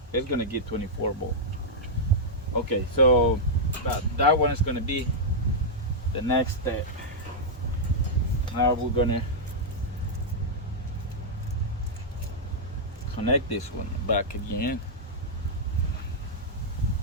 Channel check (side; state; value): both; normal; correlation -0.07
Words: it's going to get 24 volt. Okay, so that one is going to be the next step. Now we're going to connect this one back again.